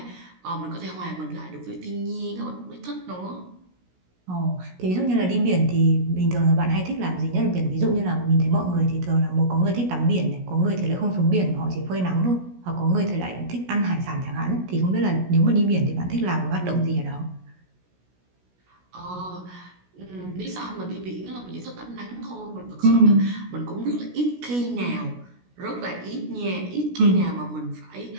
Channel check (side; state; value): left; late; 16 ms